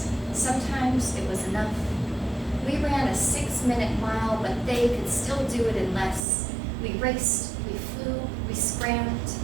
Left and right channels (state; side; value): drops out; left; at 6.2 s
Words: Sometimes it was enough. We ran a 6-minute mile, but they could still do it in less. We raced, we flew, we scrammed.